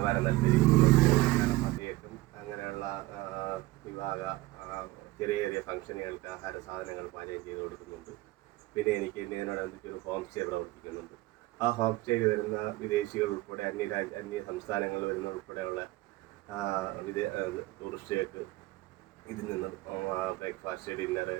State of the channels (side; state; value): left; quieter; 19.1 dB